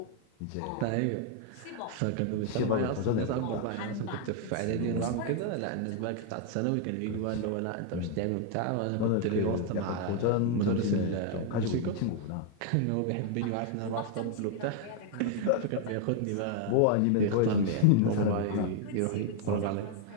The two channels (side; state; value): both; different; correlation 0.00